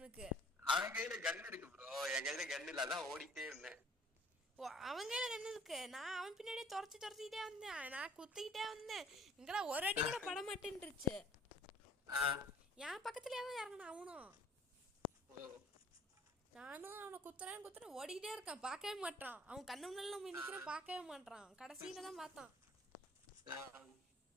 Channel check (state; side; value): normal; both; correlation 0.54